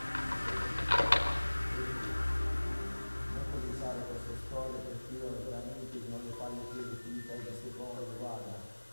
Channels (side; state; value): both; inverted; correlation -1.00